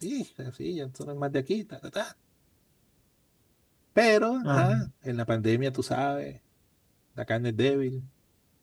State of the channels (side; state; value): both; identical; correlation 1.00